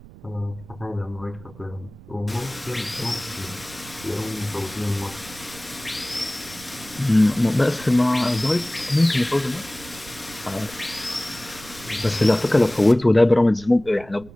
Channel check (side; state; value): right; noise; rumble, 20 dB below the sound